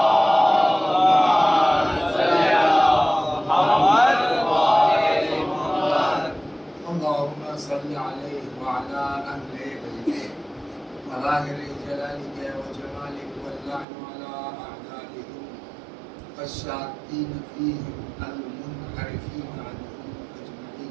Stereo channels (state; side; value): drops out; left; at 13.9 s